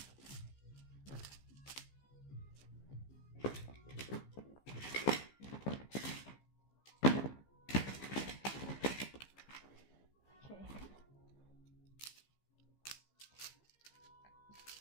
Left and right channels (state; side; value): late; right; 15 ms